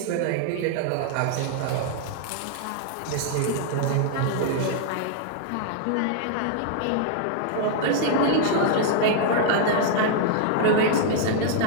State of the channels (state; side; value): different; both; correlation -0.01